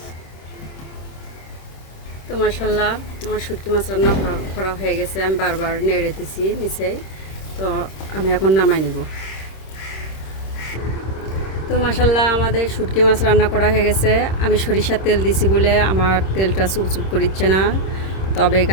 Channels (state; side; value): late; right; 26 ms